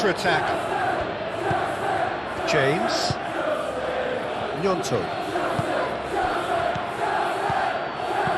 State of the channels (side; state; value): both; identical; correlation 1.00